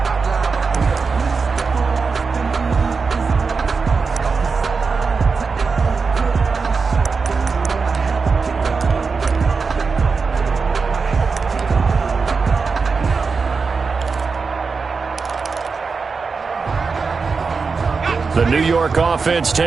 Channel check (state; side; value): quieter; left; 4.8 dB